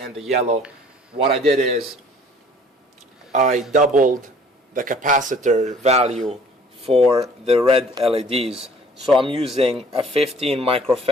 the yellow. What I did is I doubled the capacitor value for the red LEDs. So I'm using a 15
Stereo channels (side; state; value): both; normal; correlation 0.54